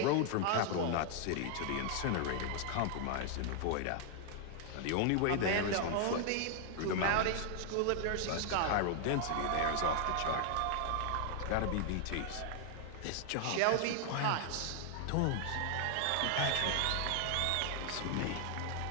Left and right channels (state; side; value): different; both; correlation 0.00